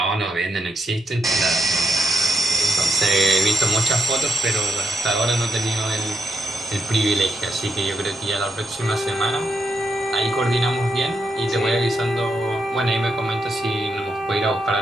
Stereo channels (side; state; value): both; normal; correlation 0.81